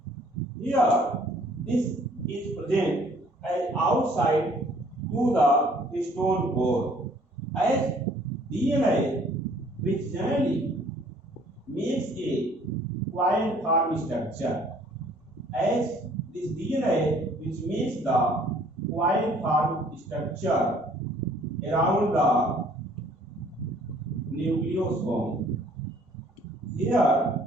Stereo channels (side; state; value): both; normal; correlation 0.58